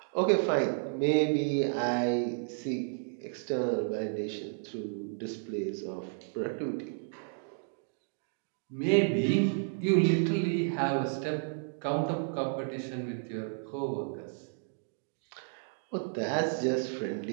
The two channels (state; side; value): silent; left; digital silence